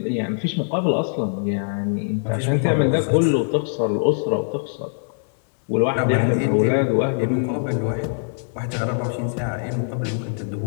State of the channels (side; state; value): right; silent; digital silence